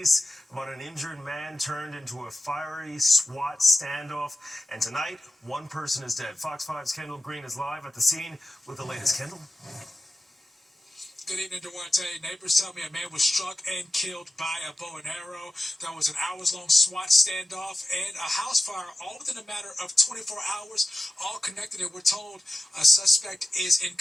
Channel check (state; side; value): normal; both; correlation 0.95